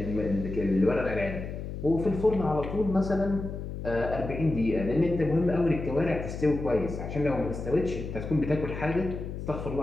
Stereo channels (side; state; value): left; noise; hum, 7 dB below the sound